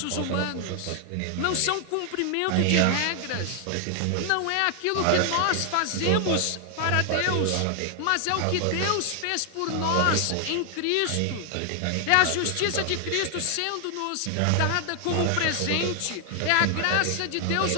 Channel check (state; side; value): different; both; correlation 0.00